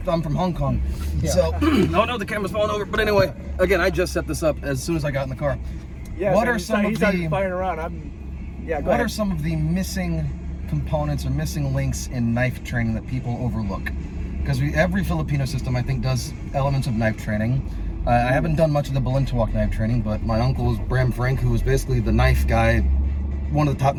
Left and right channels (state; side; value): identical; both; correlation 1.00